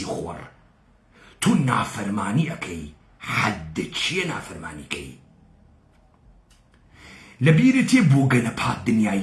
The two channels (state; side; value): identical; both; correlation 1.00